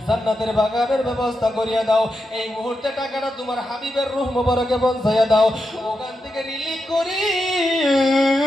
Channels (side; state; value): both; normal; correlation 0.87